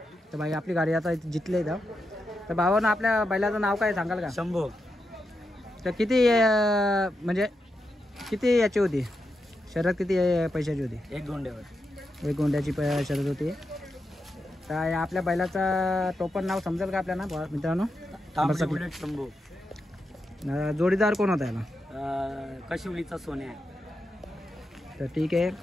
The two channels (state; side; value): normal; both; correlation 0.86